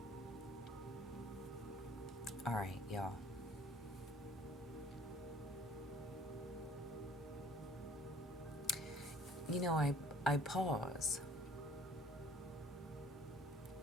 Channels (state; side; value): normal; both; correlation 0.55